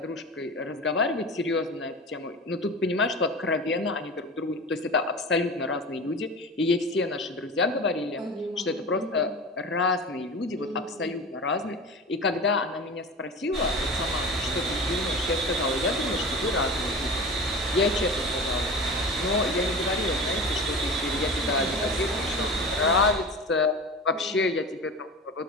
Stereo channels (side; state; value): both; normal; correlation 0.32